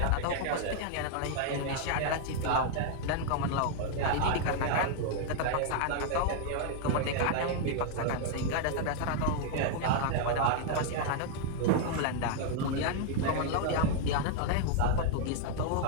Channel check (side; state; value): both; different; correlation 0.00